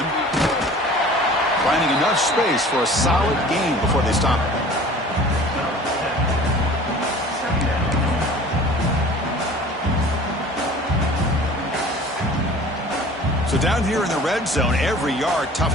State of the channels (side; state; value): both; normal; correlation 0.45